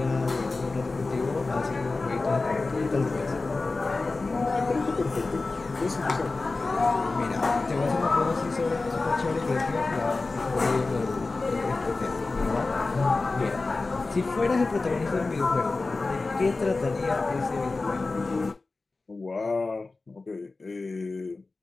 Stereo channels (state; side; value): quieter; right; 3.6 dB